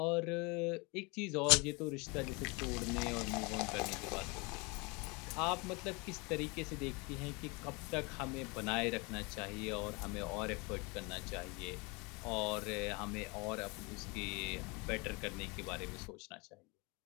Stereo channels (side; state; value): right; quieter; 28.4 dB